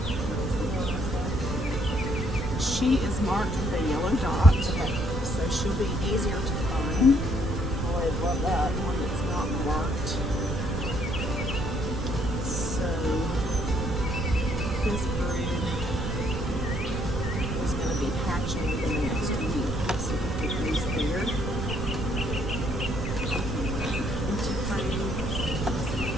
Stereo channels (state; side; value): noise; right; rumble, 3 dB below the sound